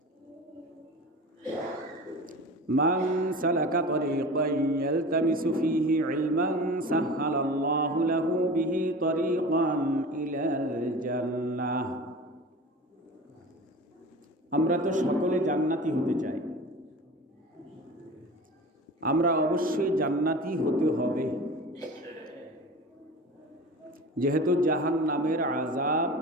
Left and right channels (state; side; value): normal; both; correlation 0.35